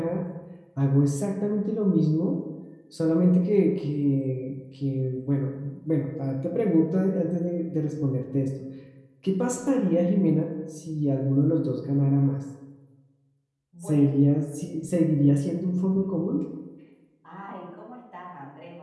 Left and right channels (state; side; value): identical; both; correlation 1.00